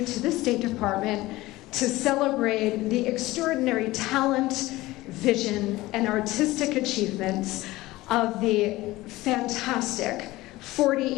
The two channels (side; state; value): right; quieter; 18.5 dB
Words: to the State Department to celebrate the extraordinary talent, vision, and artistic achievements of the fantastic